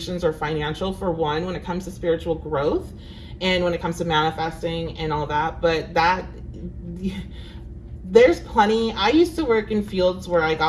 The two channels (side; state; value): both; identical; correlation 1.00